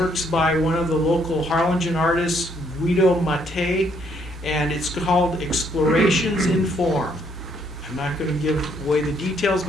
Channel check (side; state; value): both; normal; correlation 0.69